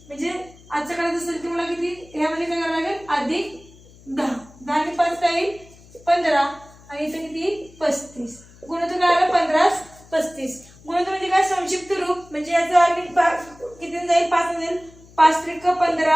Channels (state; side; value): noise; left; hum, 24 dB below the sound